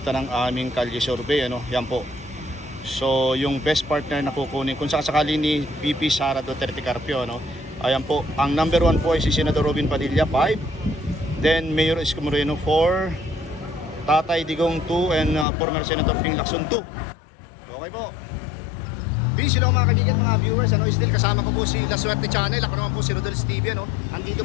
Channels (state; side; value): drops out; right; at 15.5 s